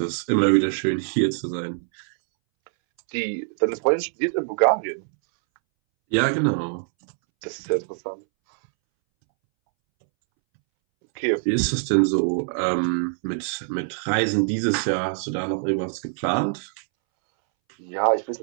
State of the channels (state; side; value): silent; left; 63 dB below the other